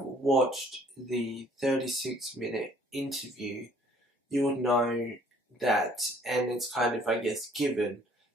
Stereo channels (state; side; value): normal; both; correlation 0.58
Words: watched the 36-minute interview, you would know that, and it's kind of, I guess, given